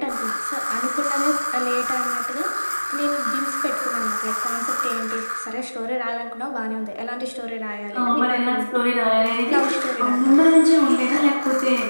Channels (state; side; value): inverted; both; correlation -1.00